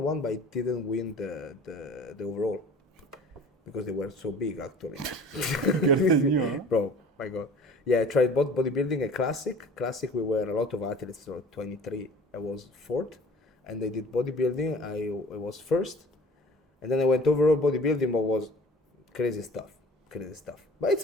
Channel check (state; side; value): normal; both; correlation 0.46